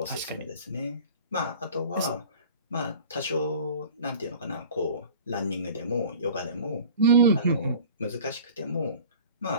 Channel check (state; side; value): inverted; both; correlation -0.42